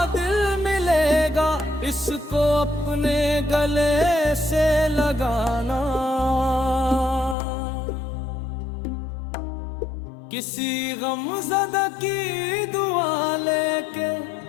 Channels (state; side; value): drops out; right; at 7.4 s